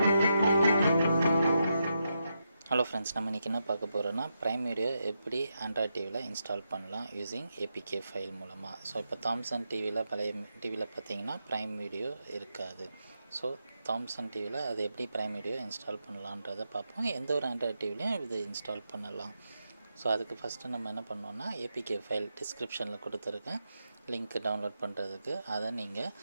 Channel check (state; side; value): inverted; both; correlation -0.85